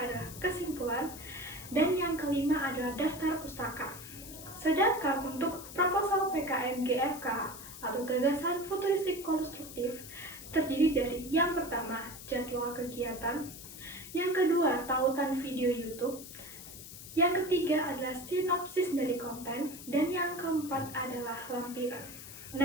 adalah kesimpulan, dan yang kelima adalah daftar pustaka. Sedangkan untuk proposal PKM-GFK atau gagasan futuristik konstruktif terdiri dari yang pertama jadwal kegiatan, yang kedua tautan video YouTube, yang ketiga adalah sinopsis dari konten, dan yang keempat adalah lampiran.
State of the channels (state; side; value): noise; left; hiss, 13 dB below the sound